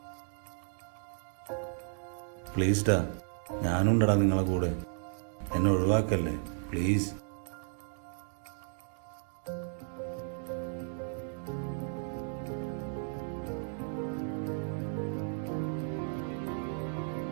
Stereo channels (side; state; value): left; silent; 55 dB below the other